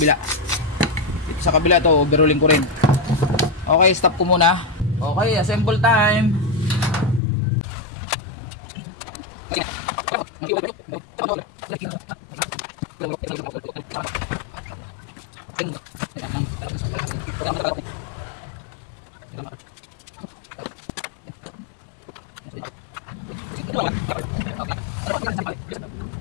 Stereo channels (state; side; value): drops out; right; at 7.2 s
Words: Dito sa kabila to, overhauling ko rin. Okay, stop ko muna. Okay, assemble time.